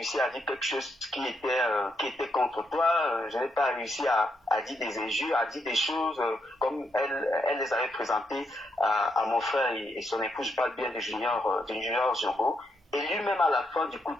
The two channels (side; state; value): both; normal; correlation 0.79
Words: à dire quelque chose qui était contre toi, je n'ai pas réussi à dire des injures, à dire des choses comme elle les avait présentées à mon frère et son épouse. Je parle bien de Junior Django. Et lui-même à la fin du coup